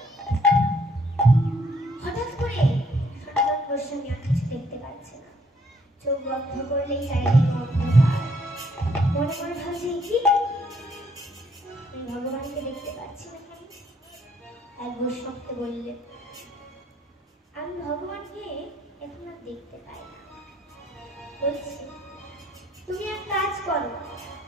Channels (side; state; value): both; normal; correlation 0.66